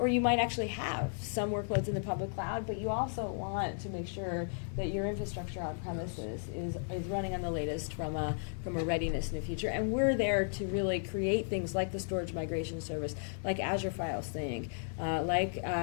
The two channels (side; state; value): right; silent; 55 dB below the other